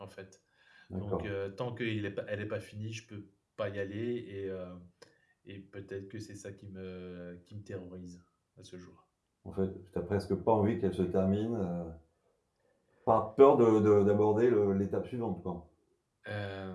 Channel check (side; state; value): both; identical; correlation 1.00